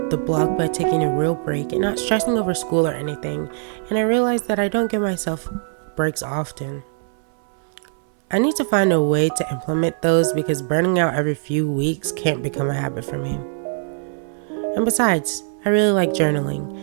the blog by taking a real break and not stressing over school or anything, and I realized that I don't give myself breaks often. I need to find a way to implement those because burning out every few weeks can't become a habit for me. And besides, I really like journaling.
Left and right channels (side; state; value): left; silent; 64 dB below the other